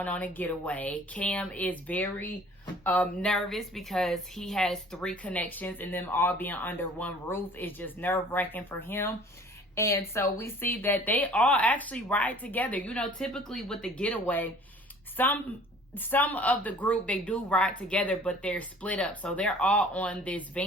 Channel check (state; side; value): normal; both; correlation 0.50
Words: on a getaway. Cam is very nervous because he has 3 connections, and them all being under one roof is just nerve-wracking for him. And so we see that they all actually ride together. You know, typically with the getaway, some of the group, they do ride together, but they're split up. So they're all on this